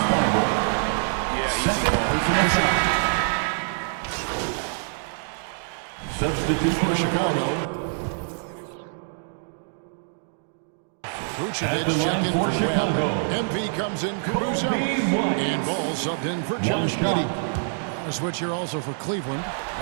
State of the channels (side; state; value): left; silent; digital silence